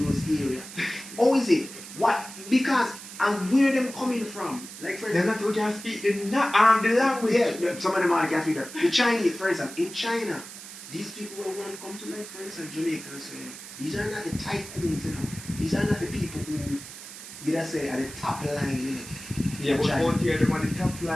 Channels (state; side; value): noise; right; hiss, 13 dB below the sound